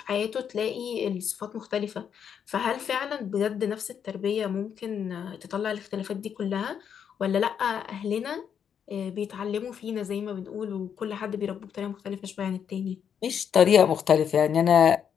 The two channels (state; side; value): quieter; right; 7.9 dB